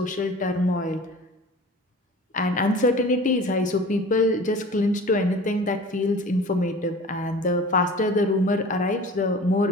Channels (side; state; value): both; normal; correlation 0.41